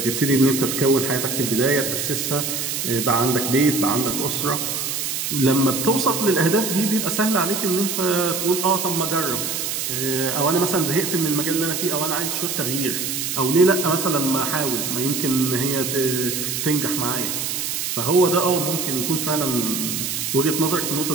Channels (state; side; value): noise; right; hiss, 2 dB below the sound